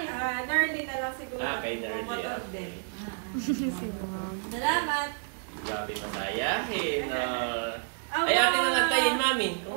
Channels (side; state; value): left; silent; digital silence